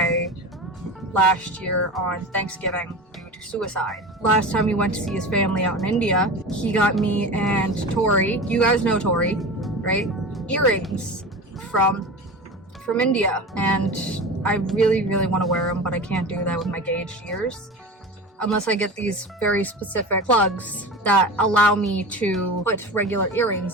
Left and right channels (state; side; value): normal; both; correlation 0.30